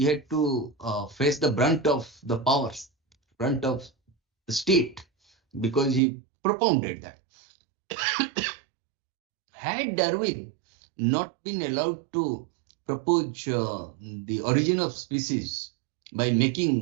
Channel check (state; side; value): drops out; left; at 6.0 s